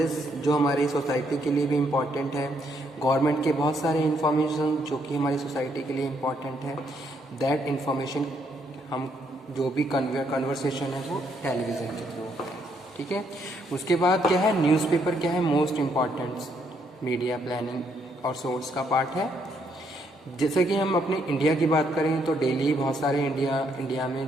जो हमारी सोसाइटी के लिए भी इम्पॉर्टेंट है, गवर्नमेंट के बहुत सारे इन्फॉर्मेशन जो कि हमारी सोसाइटी के लिए इम्पॉर्टेंट है, दैट इन्फॉर्मेशन हम जो भी कन्वर्सेशन है वो टेलीविज़न के थ्रू होता है। ठीक है, उसके बाद क्या है, न्यूज़पेपर क्या है, मोस्ट इम्पॉर्टेंट मीडिया प्लानिंग और सोर्स का पार्ट है। जैसे कि हम अपने इंडिया की बात करें तो डेली बहुत सारे इंडिया में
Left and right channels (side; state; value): both; normal; correlation 0.73